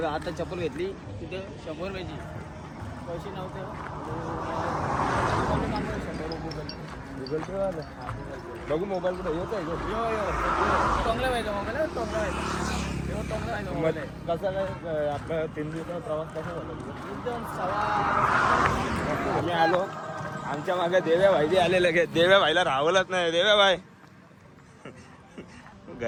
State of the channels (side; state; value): both; identical; correlation 1.00